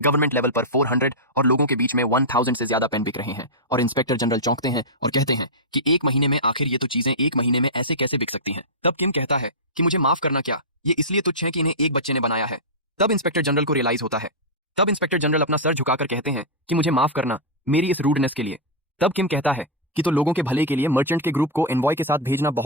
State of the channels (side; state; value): both; normal; correlation -0.09